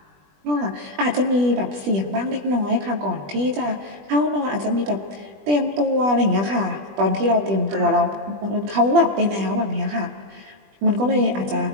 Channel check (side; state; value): left; late; 20 ms